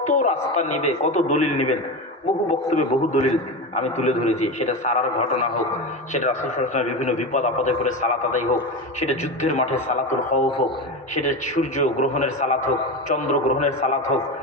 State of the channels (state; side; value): normal; both; correlation 0.21